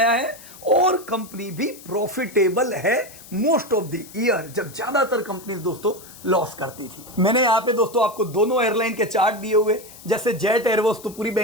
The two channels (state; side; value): noise; left; hiss, 19 dB below the sound